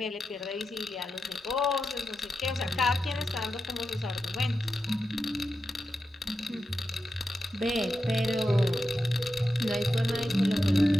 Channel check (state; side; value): normal; both; correlation 0.89